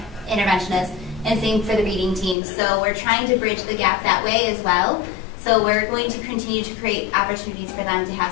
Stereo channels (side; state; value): right; drops out; at 2.4 s